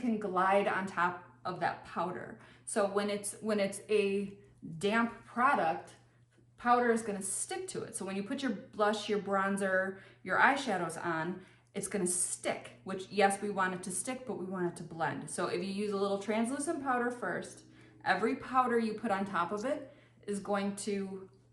glide on top of that powder. So when it's a damp product, powder is gonna stick to it. So when you put your blush, your bronzer, your eyeshadows on, it's gonna stick, which yes, we want it to stick, but we want it to blend. So if you use a little translucent powder first, every powder you put on top of it is going to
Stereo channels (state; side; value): identical; both; correlation 1.00